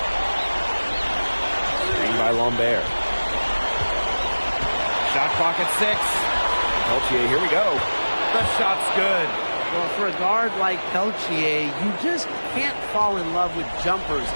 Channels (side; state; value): both; inverted; correlation -1.00